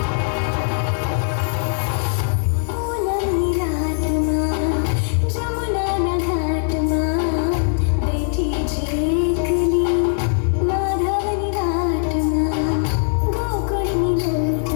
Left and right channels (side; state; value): right; silent; digital silence